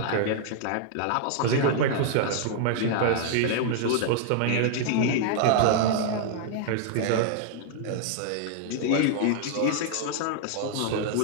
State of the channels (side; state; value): both; different; correlation -0.01